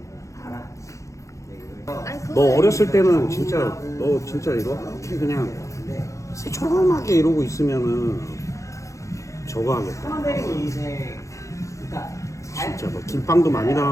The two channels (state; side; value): late; right; 0.15 ms